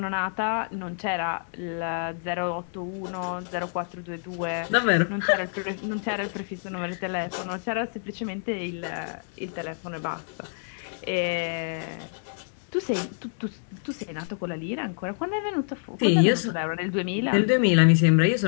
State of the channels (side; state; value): right; silent; digital silence